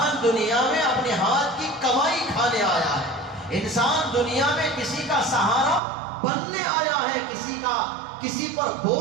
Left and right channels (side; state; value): left; drops out; at 5.8 s